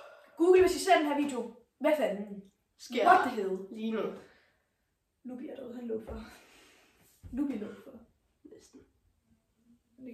Google, hvis I ser den her video, hvad fanden sker What the hell? Lige nu. Lubi er derude, han lå for. Lubi lå for. Næsten. Det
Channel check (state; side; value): identical; both; correlation 1.00